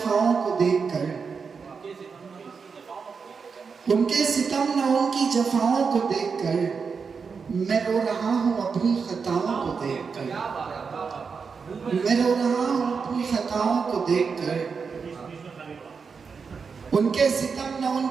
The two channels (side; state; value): left; quieter; 5.5 dB